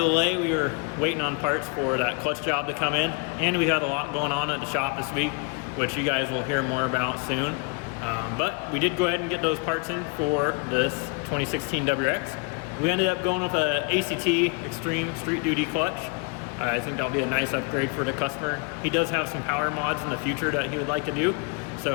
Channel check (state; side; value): quieter; right; 30.7 dB